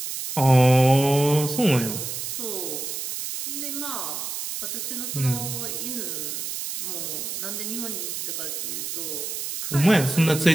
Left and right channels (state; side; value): noise; right; hiss, 5 dB below the sound